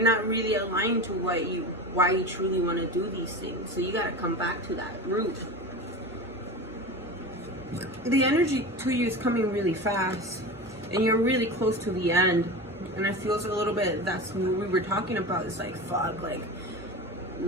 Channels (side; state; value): right; noise; hum, 22 dB below the sound